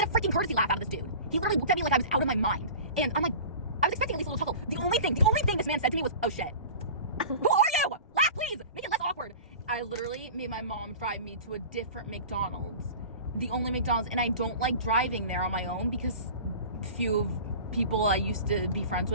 get a freaking courtesy laugh out of this dude. He literally looked at me like I was out of my mind. And I'm like, I was expecting at least a little chuckle. The only thing this man said to me was, oh shit. Who are you? Laugh, please. Make it less awkward. I literally made my mom drive me to a different McDonald's. The only McDonald's, and I don't like driving there on my own because a few of people I used to be friends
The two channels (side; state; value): both; inverted; correlation -0.37